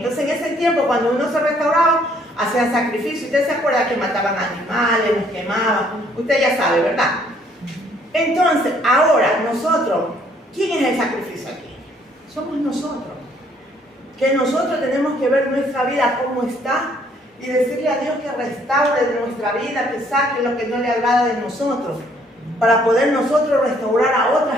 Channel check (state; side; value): normal; both; correlation 0.64